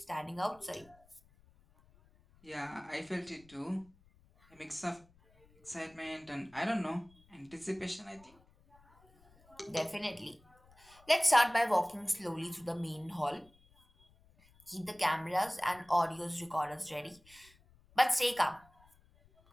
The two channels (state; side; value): noise; left; rumble, 29 dB below the sound